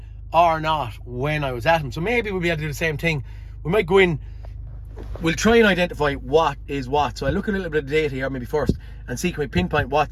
or not when I was at them. So maybe we'll be able to do the same thing. We might go in, we'll try and identify what is what. So I look at a little bit of data here maybe first and see, can we pinpoint what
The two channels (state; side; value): identical; both; correlation 1.00